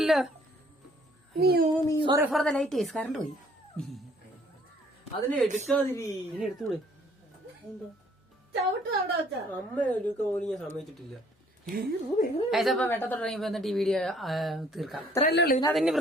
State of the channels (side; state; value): both; normal; correlation 0.61